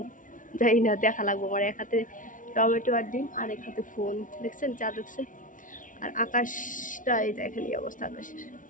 জানি না, দেখা লাগবো। আমার এক হাতে টমেটো আর ডিম আর এক হাতে ফোন, দেখছেন চাঁদ উঠছে। আর আকাশটা এই দেখেন এই অবস্থা আকাশের।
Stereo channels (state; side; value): late; right; 0.38 ms